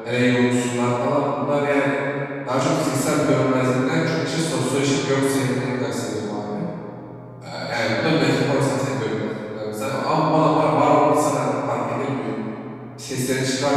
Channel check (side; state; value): both; identical; correlation 1.00